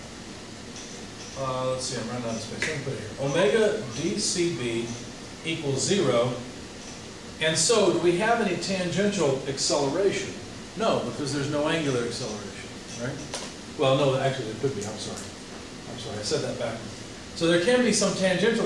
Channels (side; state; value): both; identical; correlation 1.00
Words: let's see, I'm running out of space. Let me put it here. Omega DCB equals 0. And so do we have any tangential acceleration? No, because there's no angular acceleration, right? Well, no, actually there could be. I'm sorry, I said that backwards. So there can be some